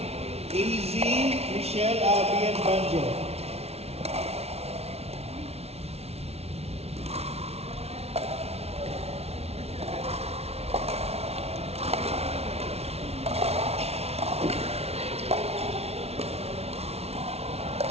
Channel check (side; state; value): left; late; 0.30 ms